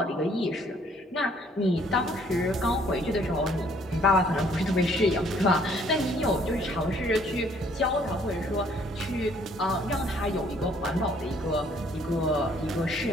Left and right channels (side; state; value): both; normal; correlation 0.62